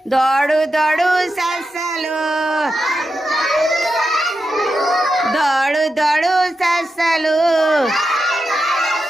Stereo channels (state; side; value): normal; both; correlation 0.88